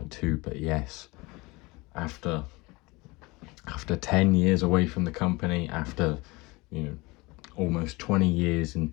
2. But yes, after 10 years away from the company, after almost 20 years in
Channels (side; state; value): right; quieter; 24.0 dB